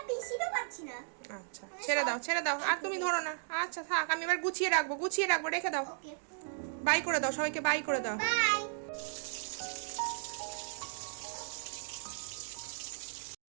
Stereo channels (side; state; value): left; silent; digital silence